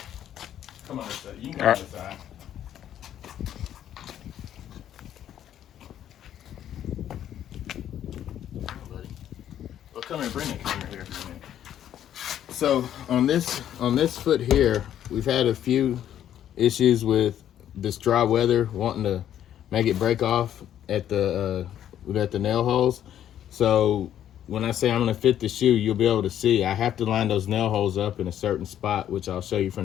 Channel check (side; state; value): right; quieter; 10.7 dB